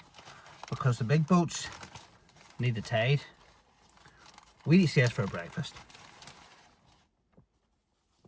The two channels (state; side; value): identical; both; correlation 1.00